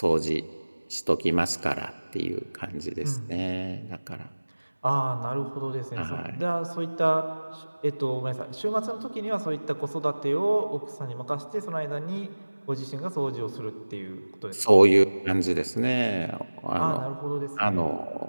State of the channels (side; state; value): both; inverted; correlation -1.00